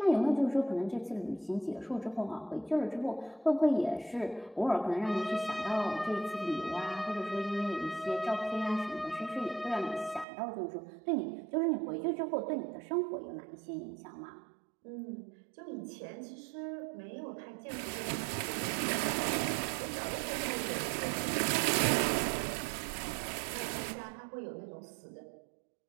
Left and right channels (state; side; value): drops out; left; at 10.2 s